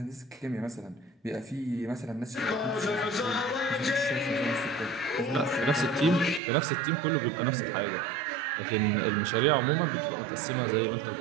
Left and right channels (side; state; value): left; drops out; at 6.4 s